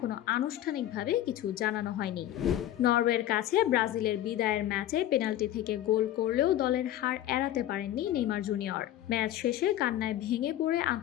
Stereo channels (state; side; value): quieter; right; 12.8 dB